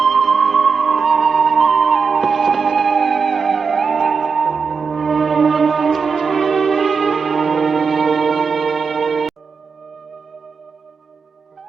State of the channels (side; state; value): left; quieter; 5.4 dB